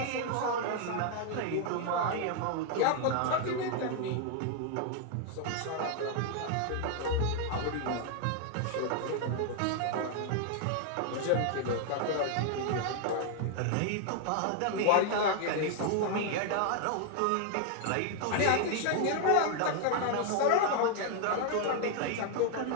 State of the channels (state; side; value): different; both; correlation 0.00